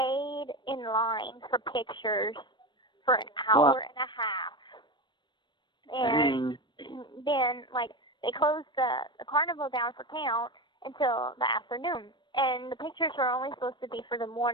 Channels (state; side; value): late; right; 0.22 ms